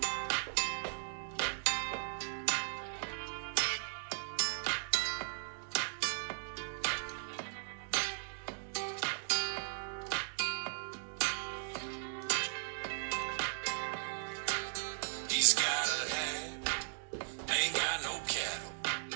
He's got a hat, ain't got no cattle,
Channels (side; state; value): left; silent; digital silence